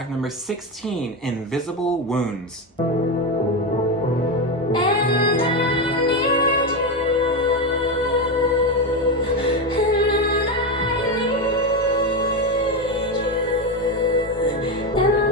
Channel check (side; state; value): both; normal; correlation 0.13